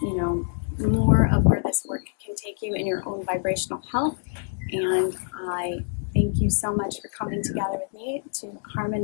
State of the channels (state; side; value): silent; right; 61 dB below the other